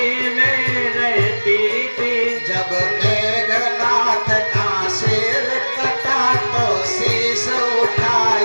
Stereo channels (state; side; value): inverted; both; correlation -1.00